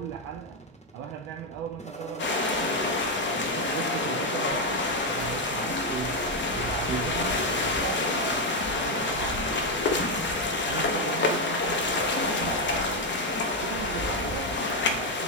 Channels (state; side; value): normal; both; correlation 0.04